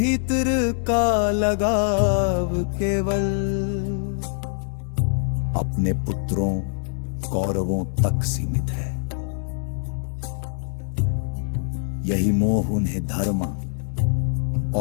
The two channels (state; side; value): silent; right; digital silence